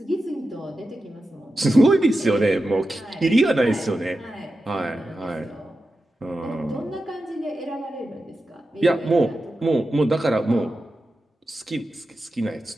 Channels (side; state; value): both; normal; correlation 0.91